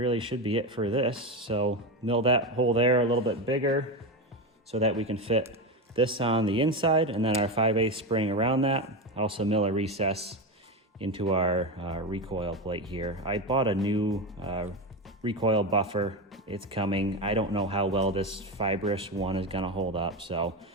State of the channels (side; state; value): both; normal; correlation 0.17